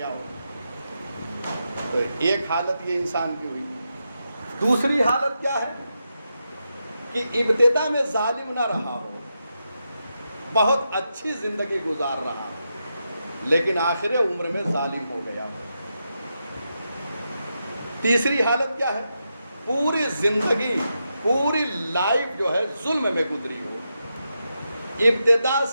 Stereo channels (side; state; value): both; inverted; correlation -0.86